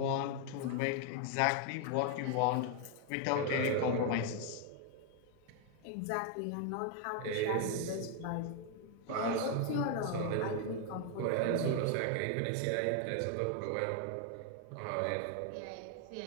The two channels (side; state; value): both; different; correlation 0.00